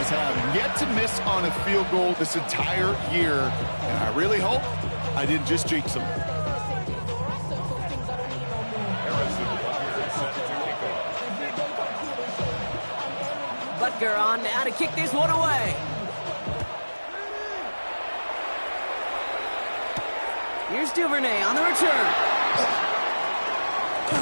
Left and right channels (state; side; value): inverted; both; correlation -1.00